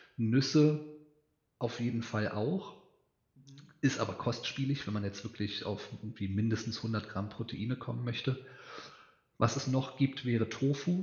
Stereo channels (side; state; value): both; identical; correlation 1.00